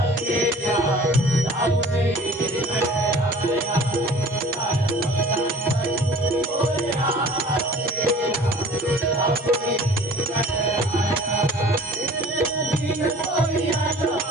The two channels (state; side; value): normal; both; correlation 0.47